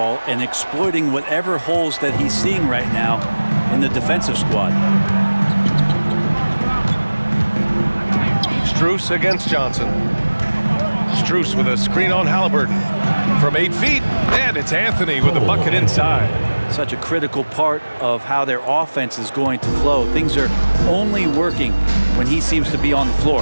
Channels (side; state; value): both; inverted; correlation -1.00